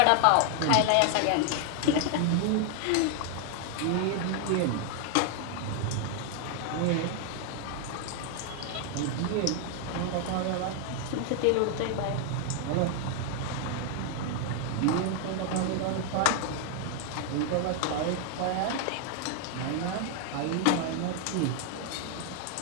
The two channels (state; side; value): different; both; correlation 0.00